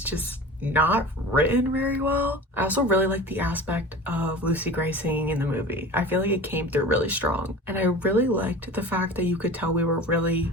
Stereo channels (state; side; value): normal; both; correlation 0.36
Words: not written very well. I also really like the aspect of Lucy Gray singing in the movie. I feel like it came through really strong. And I really liked the fact that you could tell we were really